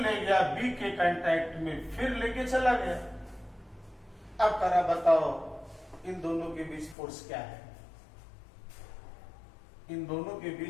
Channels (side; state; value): right; drops out; at 7.0 s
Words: गया बी के कांटेक्ट में, फिर लेके चला गया। अब करा बताओ इन दोनों के बीच फोर्स क्या है, इन दोनों के